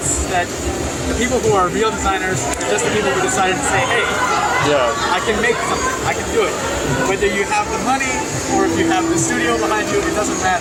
that the people who are real designers are just the people who decided to say, hey, I can make something, I can do it. Whether you have the money or if you have the studio behind you, it doesn't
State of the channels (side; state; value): both; identical; correlation 1.00